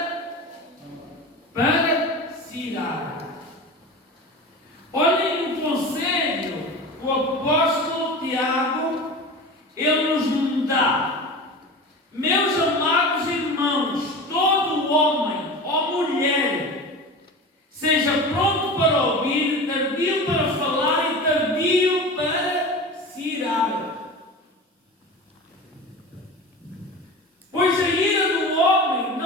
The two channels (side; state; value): both; normal; correlation 0.31